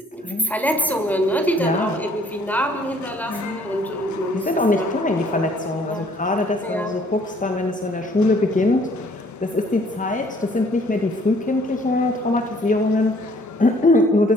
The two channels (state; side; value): normal; both; correlation 0.61